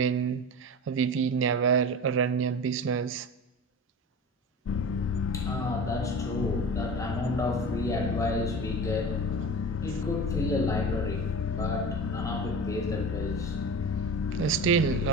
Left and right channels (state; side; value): normal; both; correlation 0.32